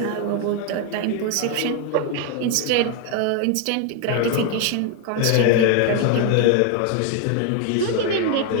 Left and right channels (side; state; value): both; different; correlation 0.01